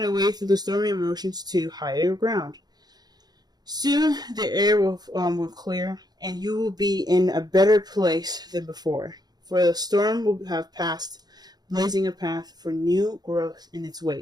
a way through the stormy emotions to higher ground? Soon the air will clear, and you will be in a better place than before. For the storm will have passed, blazing a path for new growth in its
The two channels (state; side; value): late; left; 0.19 ms